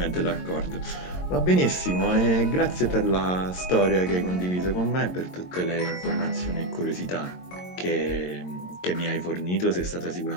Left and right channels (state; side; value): late; right; 22 ms